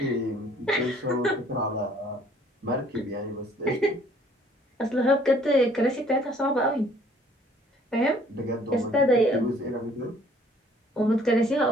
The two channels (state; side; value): normal; both; correlation 0.59